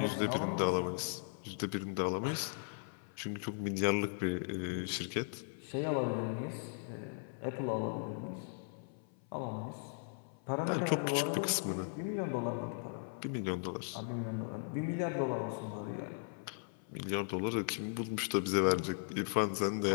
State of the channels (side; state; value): right; silent; 53 dB below the other